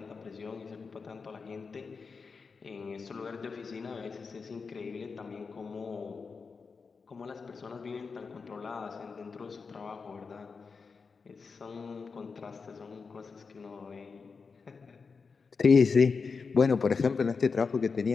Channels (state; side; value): quieter; right; 5.0 dB